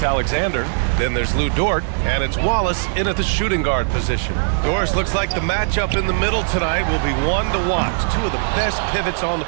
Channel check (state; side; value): silent; left; 59 dB below the other